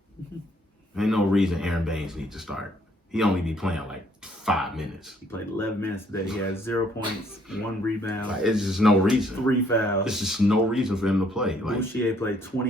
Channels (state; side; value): normal; both; correlation 0.65